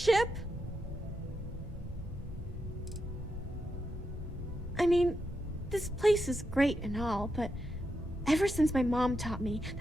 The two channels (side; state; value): both; normal; correlation 0.85